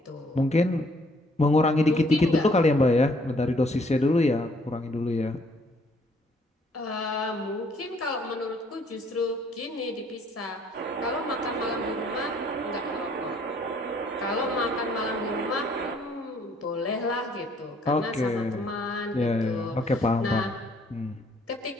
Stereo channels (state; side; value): normal; both; correlation 0.64